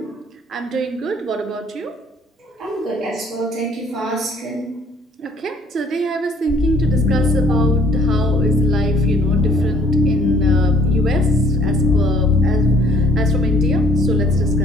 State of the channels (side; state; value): both; normal; correlation 0.59